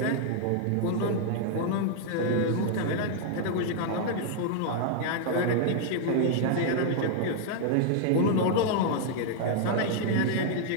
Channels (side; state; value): both; different; correlation 0.00